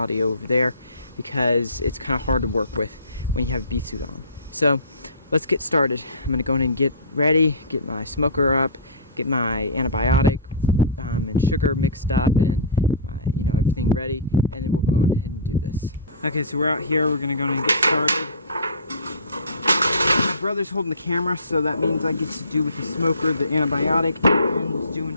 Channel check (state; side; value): inverted; both; correlation -0.34